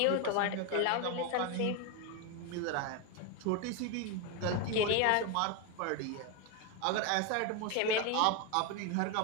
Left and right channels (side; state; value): both; different; correlation 0.02